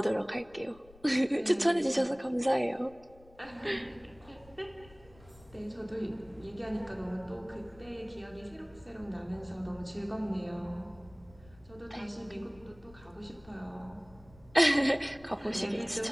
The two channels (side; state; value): left; noise; rumble, 24 dB below the sound